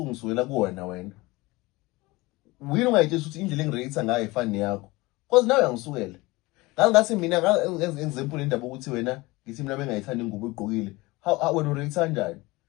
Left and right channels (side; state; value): right; quieter; 21.8 dB